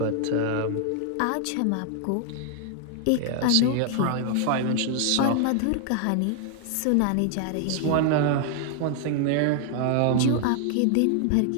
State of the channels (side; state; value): both; different; correlation 0.00